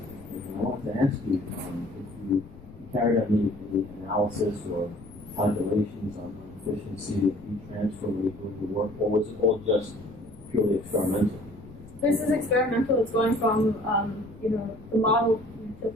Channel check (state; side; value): noise; left; rumble, 19 dB below the sound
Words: And I wanted to ask you if you carried out any analysis or calculations on the efficiency of heat transfer when you're doing the work, or was it all just purely experimental? This is experimental. It's going from the model to